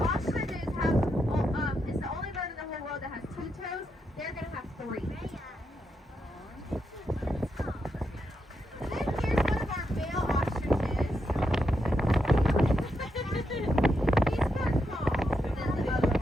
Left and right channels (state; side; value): normal; both; correlation 0.83